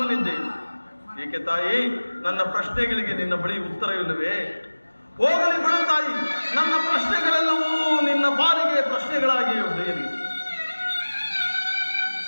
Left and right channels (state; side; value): inverted; both; correlation -1.00